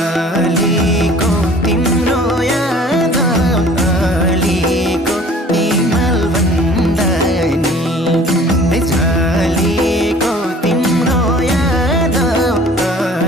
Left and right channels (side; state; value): both; normal; correlation 0.49